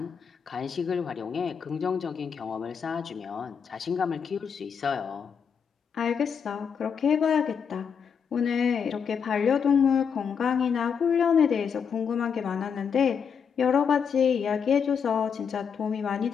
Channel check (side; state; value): right; quieter; 6.8 dB